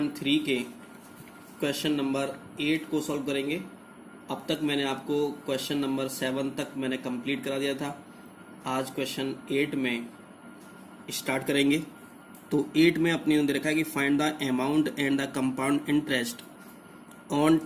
के क्वेश्चन नंबर 8 को सॉल्व करेंगे। अब तक मैंने आपको क्वेश्चन नंबर 7 तक मैंने कंप्लीट करा दिया था। आज क्वेश्चन 8 में स्टार्ट करेंगे। तो 8 में अपने दे रखा है कि find the amount and the compound interest on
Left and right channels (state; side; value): identical; both; correlation 1.00